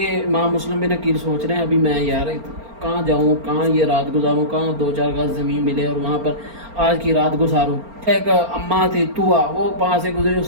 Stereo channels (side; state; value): left; late; 4.4 ms